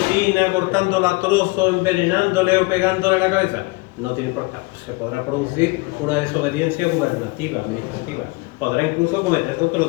cortándola a trozos, envenenándole o pegándole en la cabeza, no tiene importancia. Se podrá producir una desobediencia gubernativa, administrativa. Podrá incluso cometer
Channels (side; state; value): right; quieter; 24.4 dB